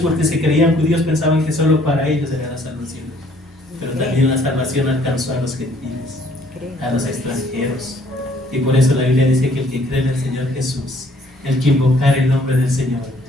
se creían judíos, pensaban que solo para ellos era la salvación. Pero también la salvación alcanzó a los gentiles, a los extranjeros. Y por eso la Biblia dice que el que cree en el Señor Jesús, el que invocar el nombre del Señor,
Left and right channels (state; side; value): normal; both; correlation 0.61